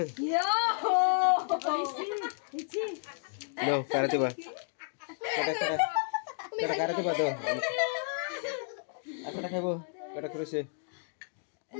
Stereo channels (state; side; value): silent; right; digital silence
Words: ইয়ো নাও কারাতে বা কাটা কারাতে বা দাও একটা খাইবো কাটা করেছে